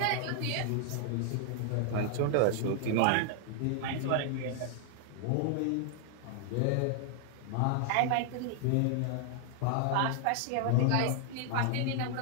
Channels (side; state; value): both; different; correlation 0.00